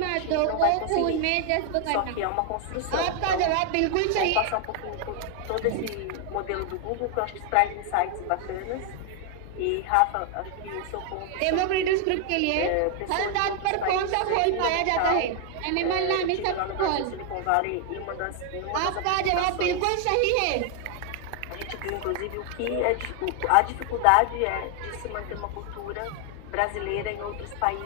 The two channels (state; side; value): different; both; correlation 0.00